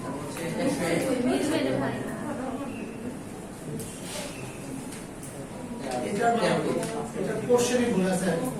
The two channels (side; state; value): both; identical; correlation 1.00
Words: মিলবে না ভাই। এটা কোশ্চেনই ভুল আছে।